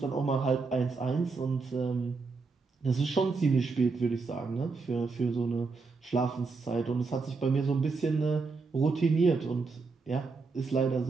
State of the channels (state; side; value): quieter; left; 4.3 dB